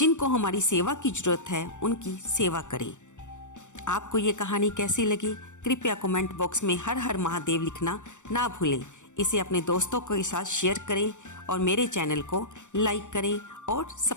हमारी सेवा की ज़रूरत है उनकी सेवा करें। आपको ये कहानी कैसी लगी? कृपया कमेंट बॉक्स में हर हर महादेव लिखना ना भूलें। इसे अपने दोस्तों के साथ शेयर करें और मेरे चैनल को लाइक करें और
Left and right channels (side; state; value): right; late; 0.85 ms